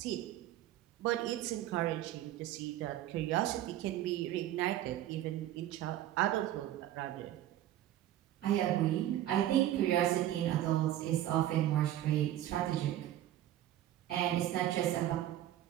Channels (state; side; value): quieter; left; 12.9 dB